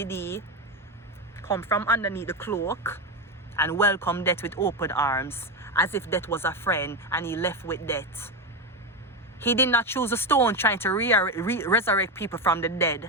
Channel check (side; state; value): both; normal; correlation 0.14